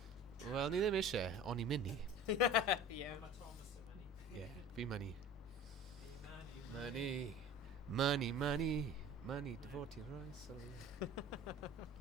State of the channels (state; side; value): normal; both; correlation 0.40